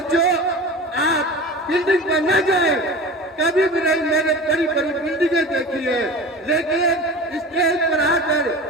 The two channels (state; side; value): normal; both; correlation 0.34